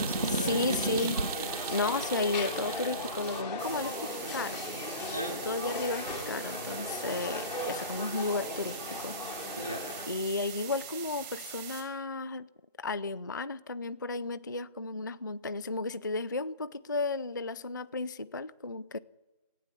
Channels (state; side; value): inverted; both; correlation -0.36